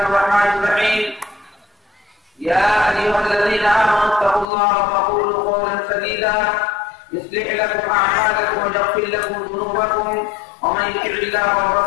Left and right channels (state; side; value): drops out; right; at 4.5 s